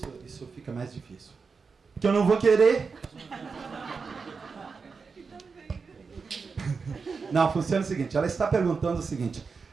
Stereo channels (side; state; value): left; quieter; 5.0 dB